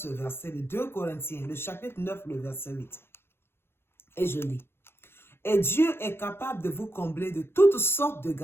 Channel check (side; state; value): right; late; 0.12 ms